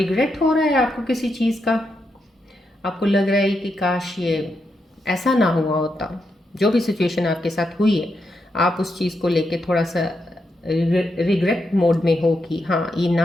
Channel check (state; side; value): normal; both; correlation 0.83